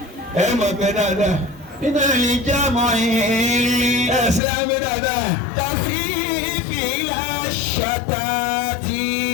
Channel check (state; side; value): drops out; right; at 4.4 s